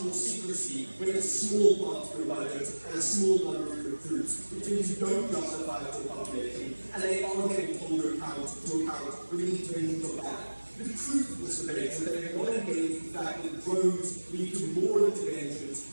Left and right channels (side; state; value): both; inverted; correlation -1.00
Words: more secrecy when it's a small part of your budget and a small number of your crews, which means you don't justify it to a population, and they aren't able to hold you to account when the interventions are bad. The truth of this debate is they have not engaged with the fact that drones lead to more interventions